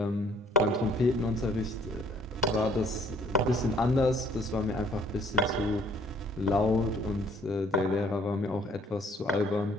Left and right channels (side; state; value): both; normal; correlation 0.61